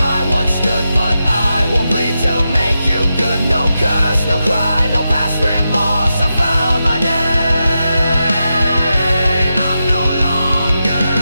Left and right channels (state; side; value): inverted; both; correlation -0.88